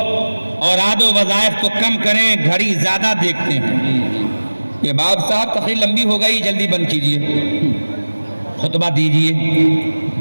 اوراد و وظائف کو کم کریں، گھڑی زیادہ دیکھتے ہیں، یہ باب صاحب تقریر لمبی ہو گئی، جلدی بند کیجئے، خطبہ دیجئے،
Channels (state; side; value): inverted; both; correlation -1.00